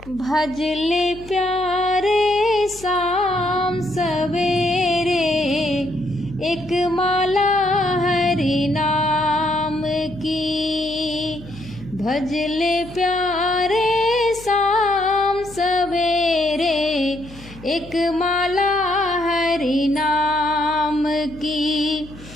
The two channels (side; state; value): left; noise; hum, 19 dB below the sound